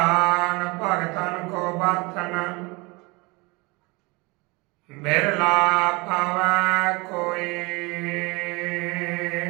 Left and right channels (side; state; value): left; quieter; 26.0 dB